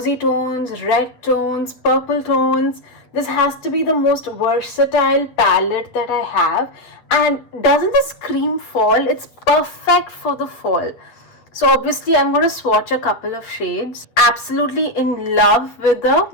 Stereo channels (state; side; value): late; right; 8.5 ms